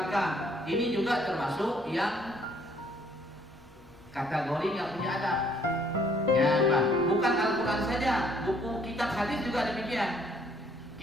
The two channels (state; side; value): normal; both; correlation 0.64